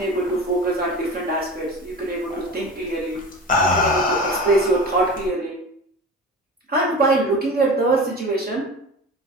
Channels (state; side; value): normal; both; correlation 0.33